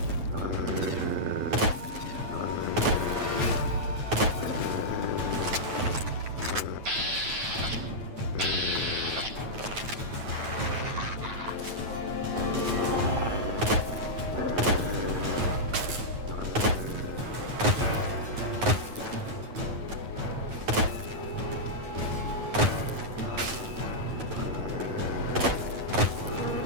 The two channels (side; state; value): left; late; 9.5 ms